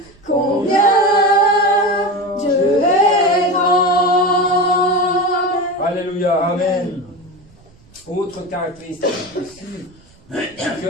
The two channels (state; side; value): noise; right; rumble, 28 dB below the sound